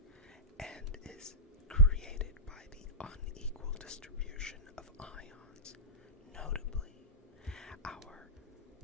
and is created by the unequal distribution of ions, notably our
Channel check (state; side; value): normal; both; correlation -0.16